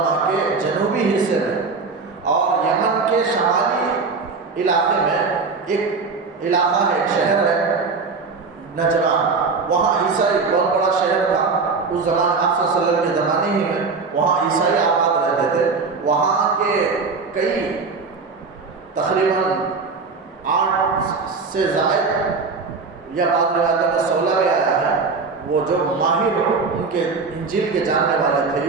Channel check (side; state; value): left; quieter; 4.5 dB